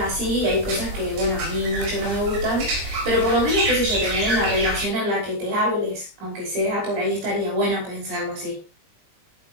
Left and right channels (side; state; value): left; late; 20 ms